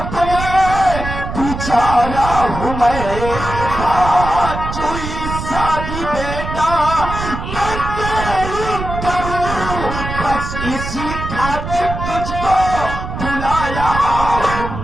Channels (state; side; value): noise; right; rumble, 6 dB below the sound